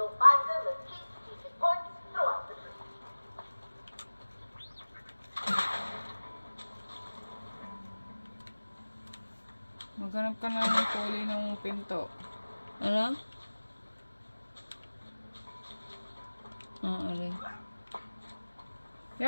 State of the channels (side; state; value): both; inverted; correlation -1.00